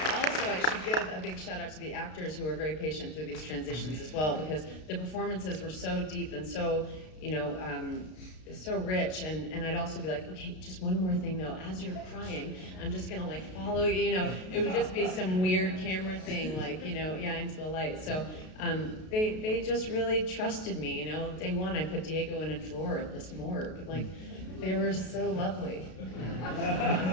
Also, I should give a big shout out to the actors who were very patient through these transitions as well, because the performances were so deep and so, you know, so rich, and I'd also be like, okay, just one more thing though, as you're crying, I'm just gonna like follow you, you know, it would just be some weird camera thing, like, you know, yeah, into the light. So they just really trusted me, you know. Day one, I put Diego in a drawer at this morgue, like, they were so lovely.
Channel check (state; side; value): late; right; 32 ms